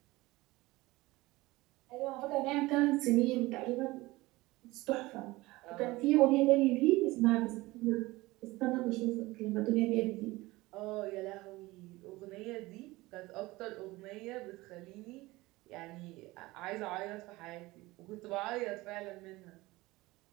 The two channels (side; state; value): left; quieter; 20.2 dB